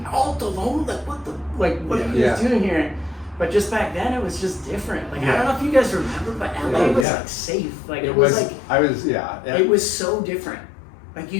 Alta Loma, like what are you guys doing here? But just back then, it was just different. Like I don't know if you guys remember, but LA was like safe. Like it was like it was so different. Like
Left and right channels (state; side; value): drops out; right; at 7.1 s